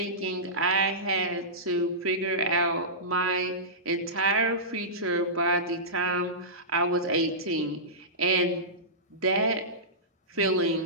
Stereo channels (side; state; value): both; normal; correlation -0.18